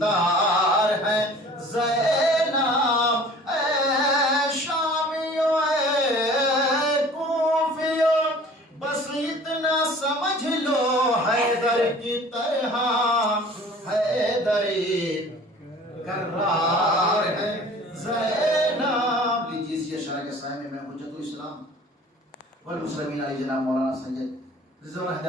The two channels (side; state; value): both; normal; correlation 0.47